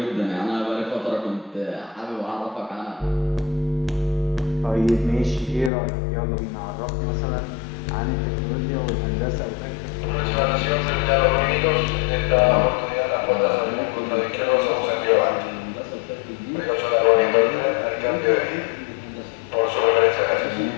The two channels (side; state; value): right; drops out; at 5.7 s